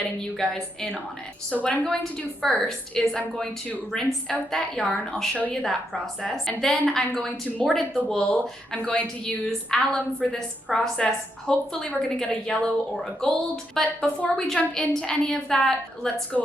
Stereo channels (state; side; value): normal; both; correlation 0.80